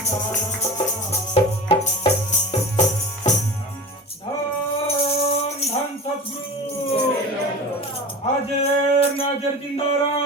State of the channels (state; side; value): normal; both; correlation 0.32